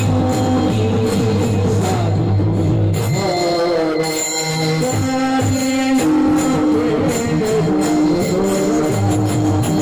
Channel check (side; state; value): both; identical; correlation 1.00